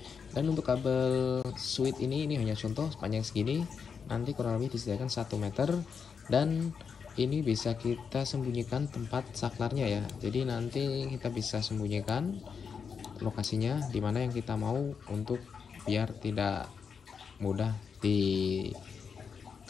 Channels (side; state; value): right; quieter; 6.2 dB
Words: Dan untuk kabel switch ini hanya contoh sepanjang segini, nanti kurang lebih disediakan 1 meter, dan ini bisa kita sembunyikan tempat saklarnya ya. Jadi nanti kita bisa sembunyikan lokasinya dimana yang kita mau untuk biar tidak mudah diketahui